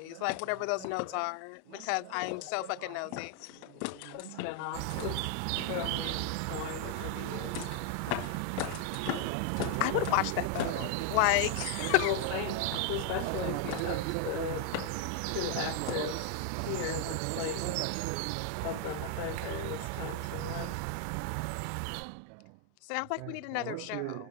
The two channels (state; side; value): different; both; correlation 0.00